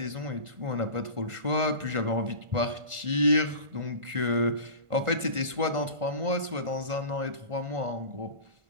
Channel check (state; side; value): late; left; 1.5 ms